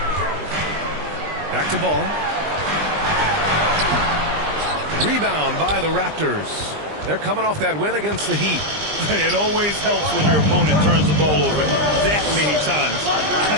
Back to Ball. Rebound by the Raptors. They're coming off that win against the Heat. It always helps when your opponent turns the ball over that many times. I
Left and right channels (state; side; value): late; left; 20 ms